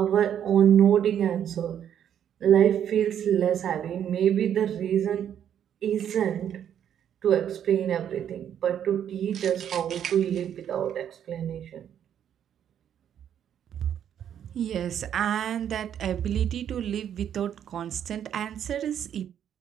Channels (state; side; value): quieter; left; 9.5 dB